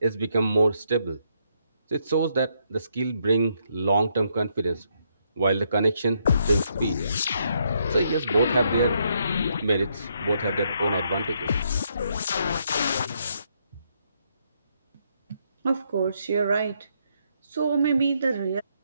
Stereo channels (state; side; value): inverted; both; correlation -0.75